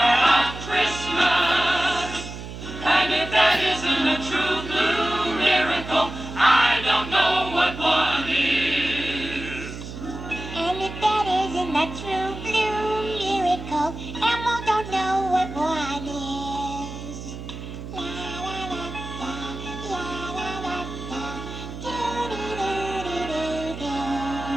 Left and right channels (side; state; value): right; noise; hum, 10 dB below the sound